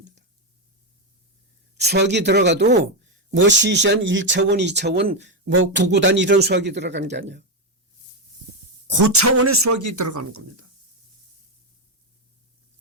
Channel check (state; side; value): normal; both; correlation 0.07